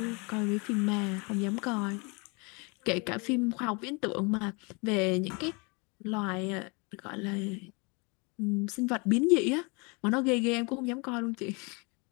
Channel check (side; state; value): right; quieter; 30.6 dB